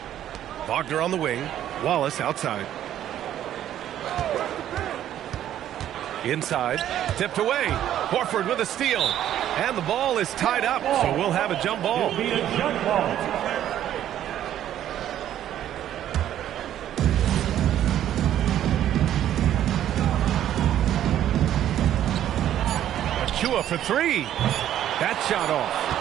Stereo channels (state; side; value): quieter; left; 11.5 dB